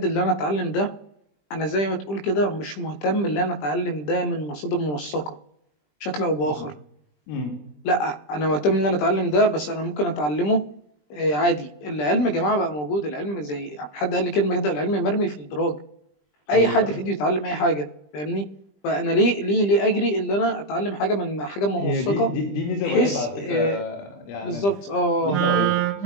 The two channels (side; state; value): right; late; 20 ms